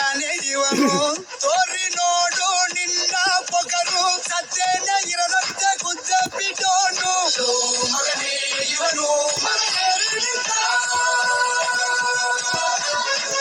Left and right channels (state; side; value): identical; both; correlation 1.00